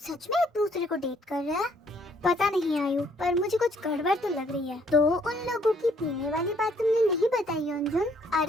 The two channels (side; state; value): both; normal; correlation 0.66